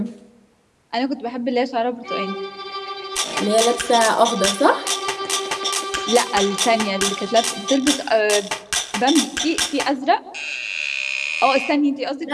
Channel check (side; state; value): both; identical; correlation 1.00